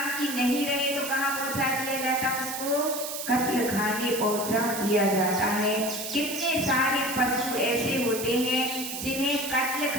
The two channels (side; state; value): right; noise; hiss, 6 dB below the sound